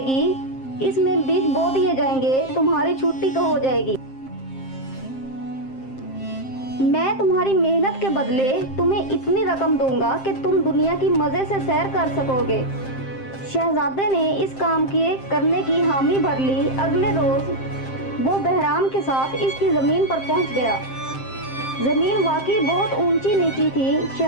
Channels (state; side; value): late; right; 7.6 ms